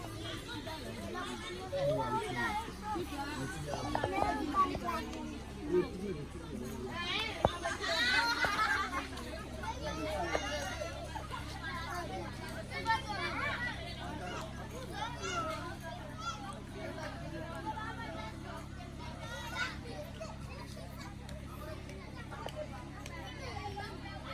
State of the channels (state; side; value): identical; both; correlation 1.00